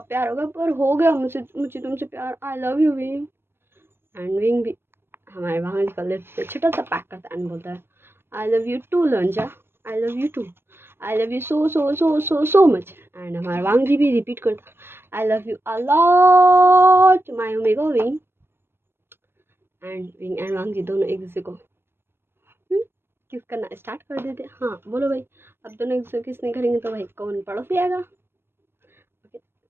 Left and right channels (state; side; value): late; left; 0.11 ms